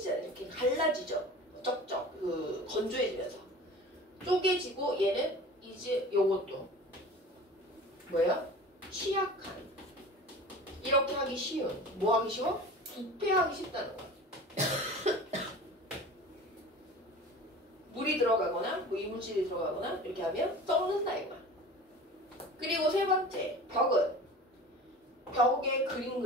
이렇게 갈라지죠. 쩍쩍 건조해지면서 쪼개지고 얘는 이제 요것도 뭐야? 취약한. 이렇게 하기 쉬운. 뭐 하기 쉬워? 부패하기 쉽다는 거야. 물이 들어가거나 뭐 이물질이 들어가거나 이렇게 하면 썩는다 이거야. 그리고 세 번째, 벽에 그림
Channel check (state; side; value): normal; both; correlation 0.38